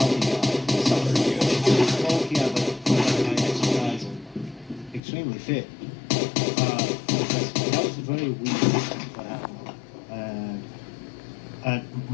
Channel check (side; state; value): right; drops out; at 5.0 s